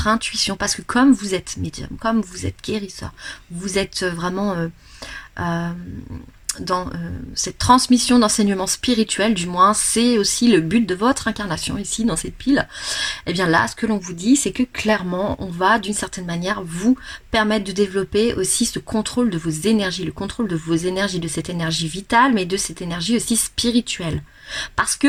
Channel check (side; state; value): both; identical; correlation 1.00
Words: intuition, parce que comme vous êtes médium, comme vous êtes guérisseur, vous êtes vraiment dans cette transmission d'enseignement spirituel, du moins c'est aussi le but de votre incarnation ici dans cette pile, et bien là ce que l'on vous dit c'est que clairement on va d'une certaine manière vous permettre de développer aussi ce contrôle de vos énergies, le contrôle de vos énergies, de cette énergie vitale mais de cette énergie aussi spirituelle. Parce